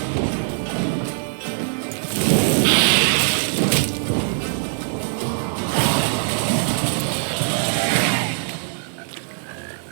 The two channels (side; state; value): left; silent; digital silence